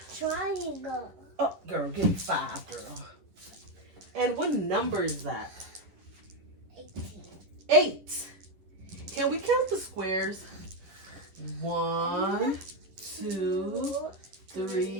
Triangle. Oh, girl, give me 5, girl. And what number is that? 8. Can we count the squares? 1, 2,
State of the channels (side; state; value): left; late; 10 ms